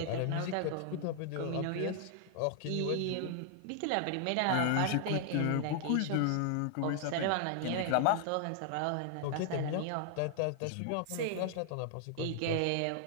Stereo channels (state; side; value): different; both; correlation 0.00